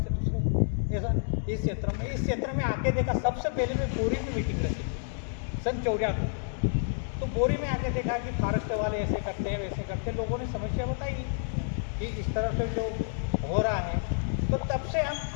दूसरे, ऐसा। इस क्षेत्र में आके देखा, सबसे पहले मैं बोरी में मीटिंग रखी सन 94 को। तो बोरी में आके देखा कि फॉरेस्ट वाले ऐसे करते हैं, वैसे करते हैं। लोगों ने समस्या बताई कि इस तरह से जो हो रहा है। तो तब से हम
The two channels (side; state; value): right; silent; digital silence